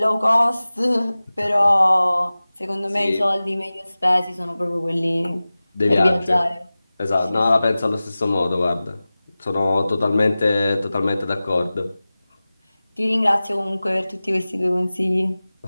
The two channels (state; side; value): inverted; both; correlation -0.97